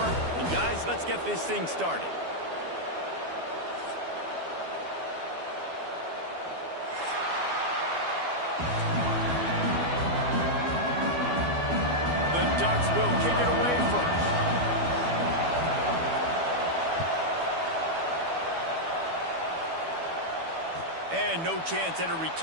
And guys, let's get this thing started. The Ducks will kick it away first. And no chance at a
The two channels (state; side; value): late; left; 12 ms